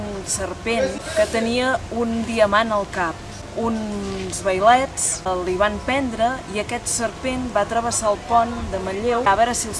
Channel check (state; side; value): identical; both; correlation 1.00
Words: serpent que tenia un diamant al cap. Uns vailets li van prendre i aquest serpent va travessar el pont de Manlleu a veure si